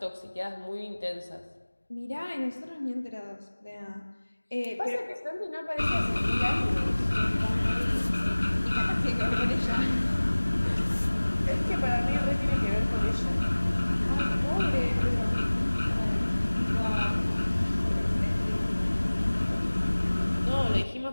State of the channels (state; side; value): inverted; both; correlation -1.00